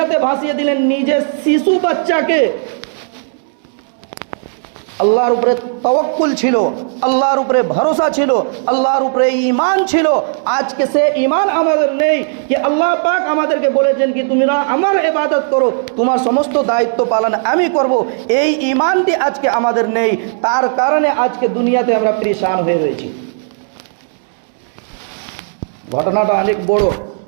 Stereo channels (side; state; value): left; silent; digital silence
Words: ভাসিয়ে দিলেন নিজের শিশু বাচ্চাকে। আল্লাহর উপরে তাওয়াক্কুল ছিল, আল্লাহর উপরে ভরসা ছিল, আল্লাহর উপরে ঈমান ছিল। আজকে সে ঈমান আমাদের নেই যে আল্লাহ পাক আমাদেরকে বলেছেন কি তোমরা আমার ইবাদত করো, তোমার সমস্ত দায়িত্ব পালন আমি করব। এই ঈমানটি আজকে আমাদের নেই, তার কারণে আজকে দুনিয়াতে আমরা পরেশান হয়ে রয়েছি। ঘটনাটা অনেক বড়,